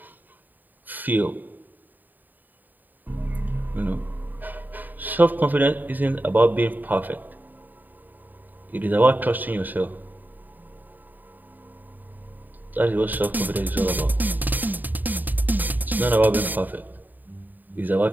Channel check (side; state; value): left; late; 0.087 ms